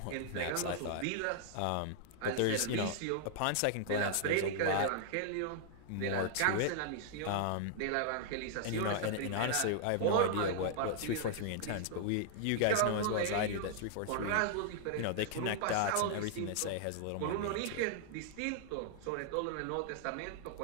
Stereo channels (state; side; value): different; both; correlation -0.01